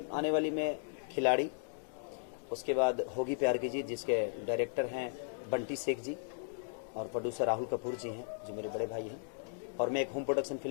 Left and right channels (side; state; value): right; silent; digital silence